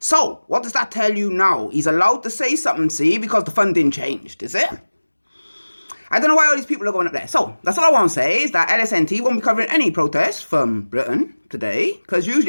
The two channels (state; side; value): inverted; both; correlation -1.00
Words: So, what does that tell you now? He's allowed to say something, because the funding changed, is it? I don't know why all these people are going up there. So, that's all I want to say is that LSNT won't be covering any protests from Britain today, because